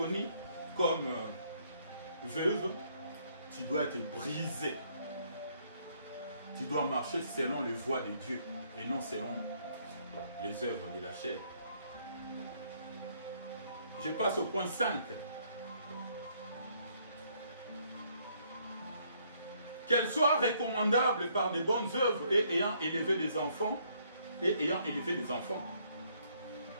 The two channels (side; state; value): both; inverted; correlation -0.68